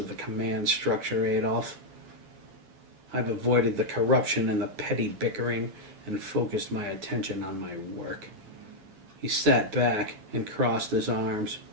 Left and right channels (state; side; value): late; left; 9.9 ms